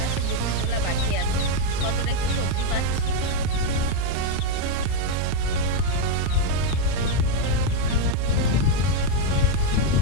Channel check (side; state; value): both; different; correlation 0.02